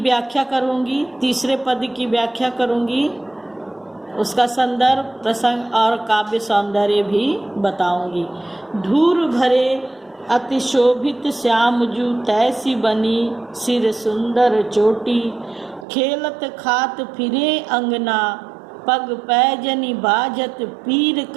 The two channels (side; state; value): left; drops out; at 15.9 s